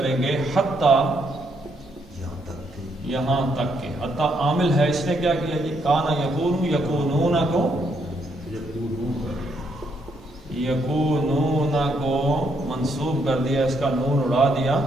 گے حتی یہاں تک کہ، حتی عامل ہے، اس نے کیا کیا جی، کانا یکون یکونون کو، یکونون کو منصوب کر دیا، اس کا نون اڑا دیا،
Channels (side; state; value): both; normal; correlation 0.74